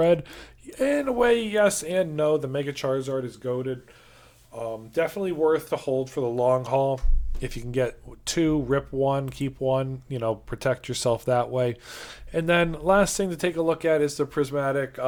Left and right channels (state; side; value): identical; both; correlation 1.00